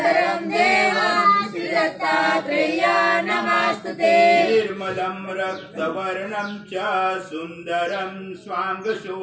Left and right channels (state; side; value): identical; both; correlation 1.00